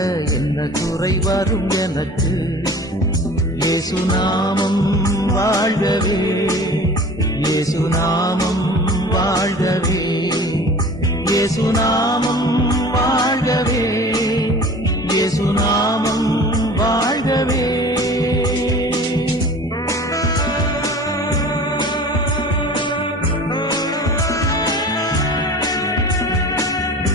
என்ன குறை வரும் எனக்கு. இயேசு நாமம் வாழ்கவே, இயேசு நாமம் வாழ்கவே, இயேசு நாமம் வாழ்கவே, இயேசு நாமம் வாழ்கவே.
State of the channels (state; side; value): normal; both; correlation 0.41